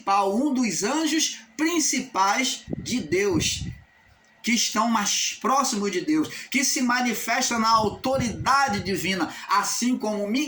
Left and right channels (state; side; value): identical; both; correlation 1.00